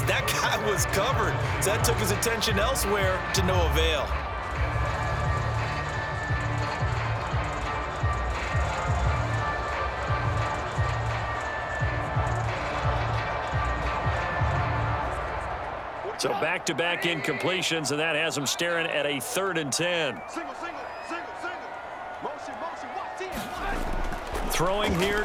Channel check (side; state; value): both; identical; correlation 1.00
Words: that guy was covered. So that took his attention elsewhere to no avail. So back-to-back incompletions, and that has him staring at a 3rd and 10. Throwing here,